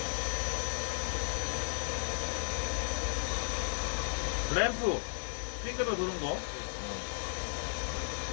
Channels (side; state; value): right; silent; 55 dB below the other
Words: 램프 빙글빙글 도는 거.